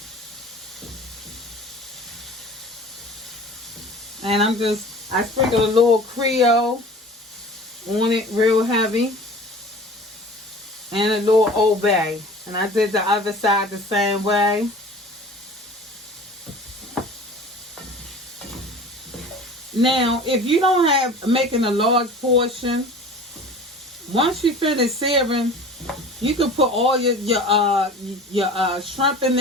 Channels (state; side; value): normal; both; correlation 0.41